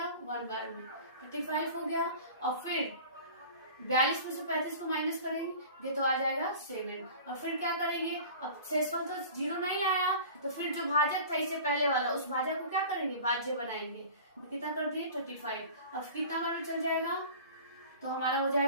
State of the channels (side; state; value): both; inverted; correlation -0.40